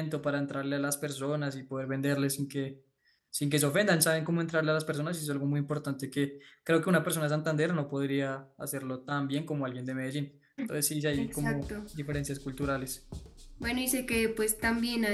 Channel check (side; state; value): both; identical; correlation 1.00